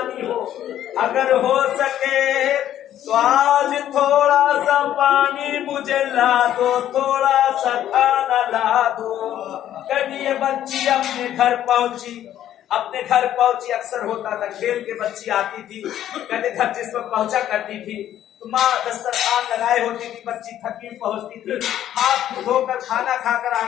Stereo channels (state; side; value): quieter; right; 11.6 dB